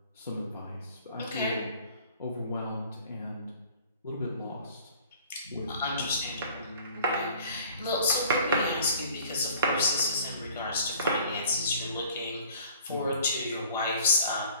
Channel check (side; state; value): both; inverted; correlation -0.50